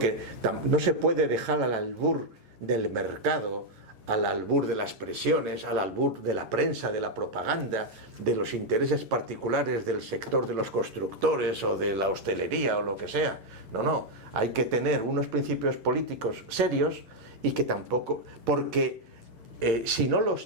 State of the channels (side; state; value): left; late; 8.8 ms